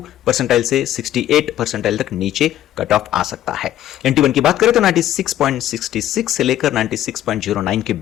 परसेंटाइल से 68 परसेंटाइल तक नीचे कट ऑफ आ सकता है। NT1 की बात करें तो 96.66 से लेकर 96.09 के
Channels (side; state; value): right; quieter; 12.4 dB